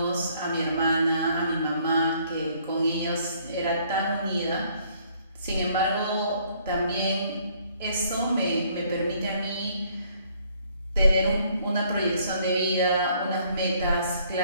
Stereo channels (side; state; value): both; inverted; correlation -0.64